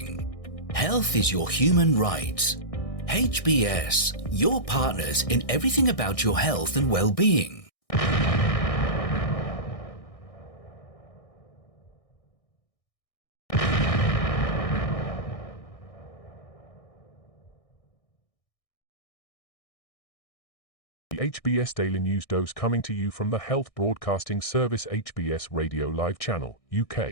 Health is your human right. HBS, your partners in everything about your health and well-being. The HBS Daily News Dose coming to you from the Health Broadcasting Service HBS Radio Live Channel,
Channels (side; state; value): right; late; 1.6 ms